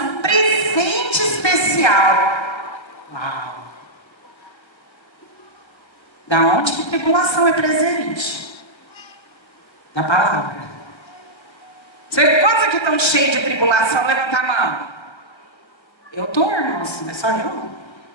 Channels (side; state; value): right; late; 1.3 ms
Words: presente especial. Uau! Da onde que tribulação é presente? Da palavra. Quantos aqui estão cheios de tribulação? Levanta a mão. Eu estou, irmãos, não é só eu.